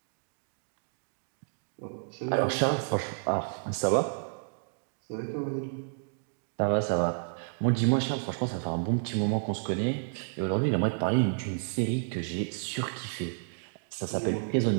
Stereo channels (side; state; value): left; silent; digital silence